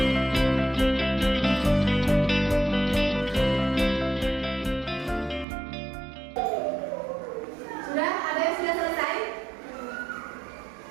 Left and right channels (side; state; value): left; drops out; at 5.5 s